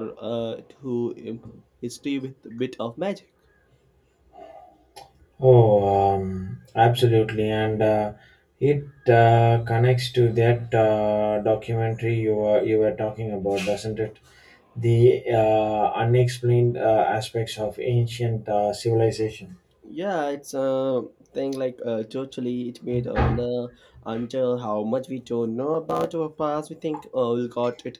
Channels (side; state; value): both; identical; correlation 1.00